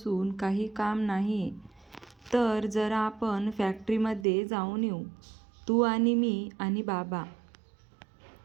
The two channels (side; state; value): left; drops out; at 4.2 s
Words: काही काम नाही, तर जरा आपण फॅक्टरीमध्ये जाऊन येऊ, तू आणि मी आणि बाबा.